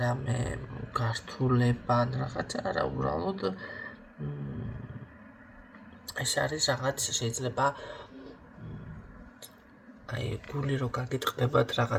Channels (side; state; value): both; identical; correlation 1.00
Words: რამე გართულება ან რაღაცა არა, უბრალოდ ეს არის რაღაც შეიძლება გული რო გაგიტყდებათ